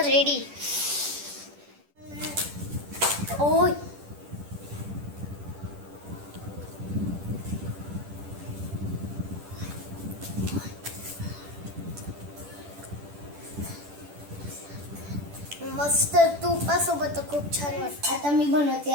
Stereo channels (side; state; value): left; late; 10 ms